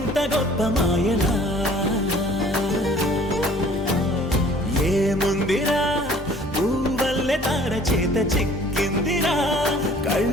గొప్ప మాయలా ఏముందిరా నువ్వల్లే తార చేత చిక్కిందిరా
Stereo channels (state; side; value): normal; both; correlation 0.52